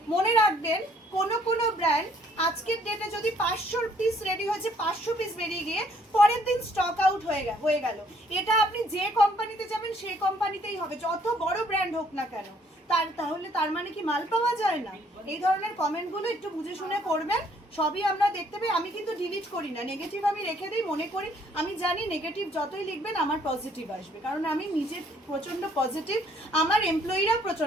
মনে রাখবেন কোনো ব্র্যান্ড আজকের ডেটে যদি 500 পিস রেডি হয়েছে, 500 পিস বেরিয়ে গিয়ে পরের দিন স্টক আউট হয়ে গেল, এটা আপনি যে কোম্পানিতে যাবেন সেই কোম্পানিতেই হবে, যত বড় ব্র্যান্ড হোক না কেন। তাহলে তার মানে কি মাল পাওয়া যায় না? এই ধরনের কমেন্টগুলো একটু বুঝে শুনে করবেন, সবই আমরা দেখতে পাই। আমি কিন্তু ডিলিট করি না, নেগেটিভ আমি রেখে দিই, মনে করি আমি জানি নেগেটিভ যতই লিখবেন আমার পজিটিভ আসবে, কারণ আমি নিজে প্রচণ্ড পজিটিভ, আমার এমপ্লয়িরা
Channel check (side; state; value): both; normal; correlation 0.64